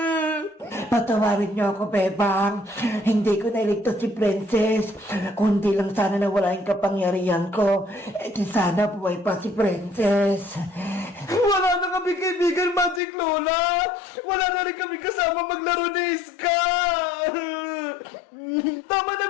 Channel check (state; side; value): drops out; right; at 13.0 s